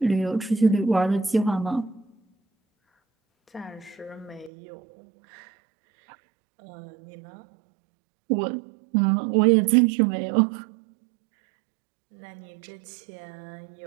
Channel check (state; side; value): drops out; left; at 4.5 s